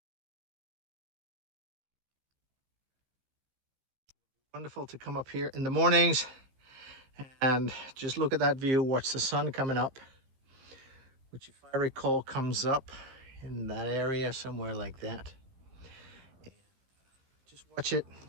Wonderful to come up here in the mornings and just look at that view, watch the sun coming up, which, if I recall, comes up in that area somewhere like that. Just watch it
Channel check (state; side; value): late; left; 15 ms